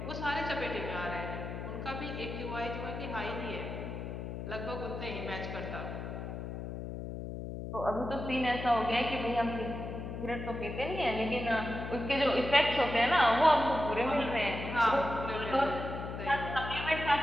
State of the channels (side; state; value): left; noise; hum, 6 dB below the sound